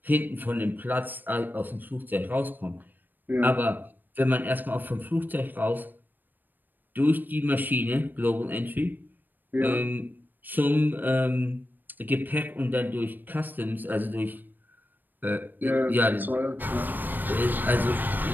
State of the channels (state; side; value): late; left; 0.091 ms